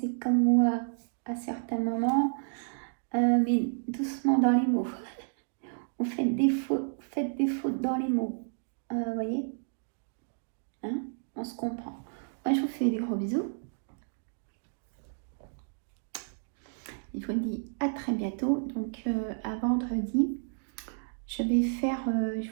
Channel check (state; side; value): silent; left; digital silence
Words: comme moi à certains moments, mais doucement dans les mots. Vous faites des fautes dans les mots. Vous voyez, hein, on se comprend. Moi, je vous fais des gros bisous. Je vous dis à très bientôt. Donc, à vendredi, je